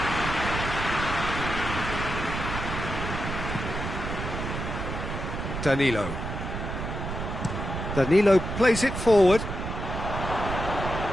Danilo. Danilo plays it forward.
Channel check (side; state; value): right; noise; rumble, 5 dB below the sound